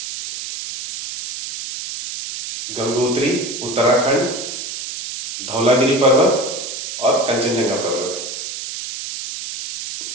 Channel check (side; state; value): right; noise; hiss, 7 dB below the sound